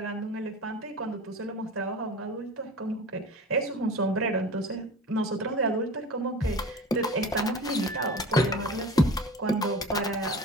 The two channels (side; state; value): both; normal; correlation 0.36